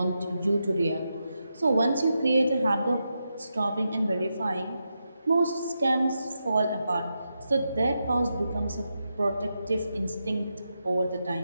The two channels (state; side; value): inverted; both; correlation -0.86